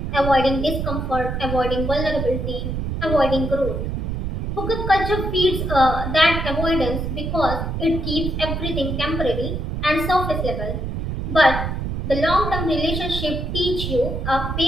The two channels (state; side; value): noise; right; rumble, 3 dB below the sound